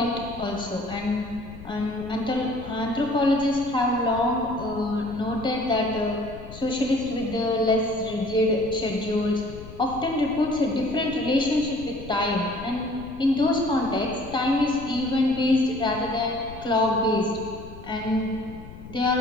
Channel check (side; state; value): left; noise; rumble, 15 dB below the sound